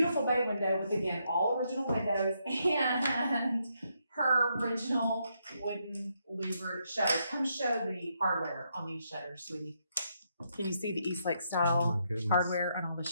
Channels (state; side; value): inverted; both; correlation -0.78